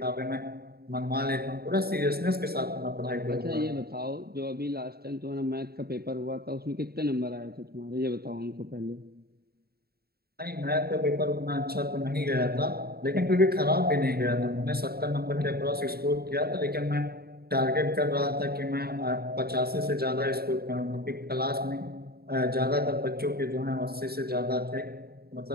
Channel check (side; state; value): left; late; 0.45 ms